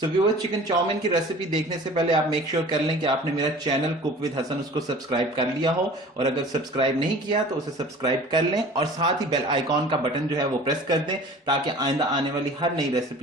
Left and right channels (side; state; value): both; normal; correlation 0.43